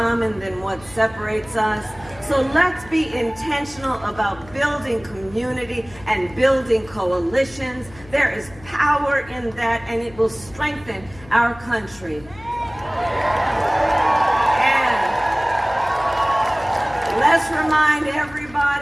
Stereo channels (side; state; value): left; noise; hum, 21 dB below the sound